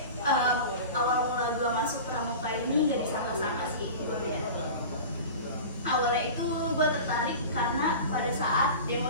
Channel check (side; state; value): both; inverted; correlation -0.34